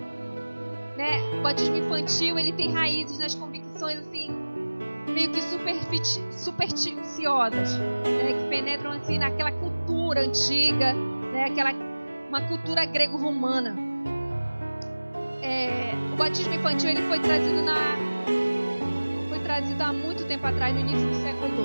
Né? O batismo infantil, ele tem raízes nas convicções assim, meio que supersticiosas, né? Que penetram assim naquela cultura antiga, né? Uma cultura grego-romana. O batismo infantil, ele foi trazido há muito tempo atrás, no início do século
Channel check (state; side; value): inverted; both; correlation -1.00